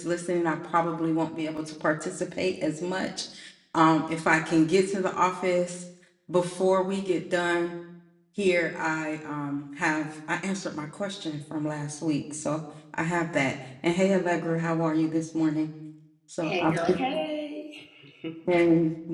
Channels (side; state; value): both; identical; correlation 1.00